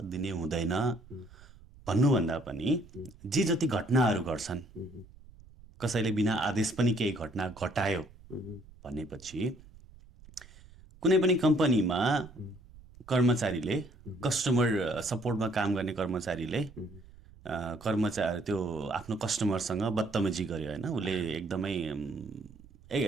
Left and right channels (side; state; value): right; noise; rumble, 22 dB below the sound